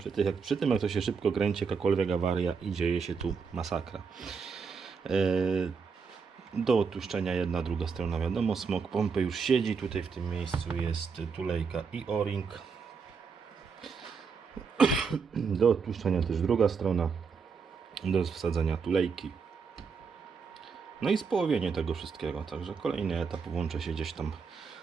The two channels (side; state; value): left; quieter; 5.6 dB